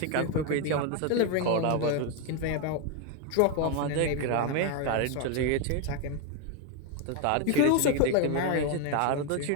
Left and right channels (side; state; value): both; different; correlation 0.01